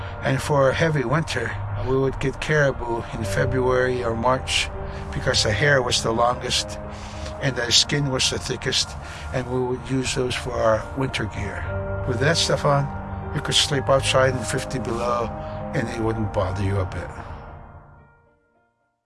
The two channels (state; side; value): identical; both; correlation 1.00